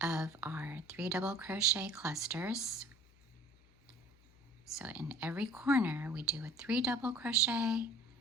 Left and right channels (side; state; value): left; noise; hum, 28 dB below the sound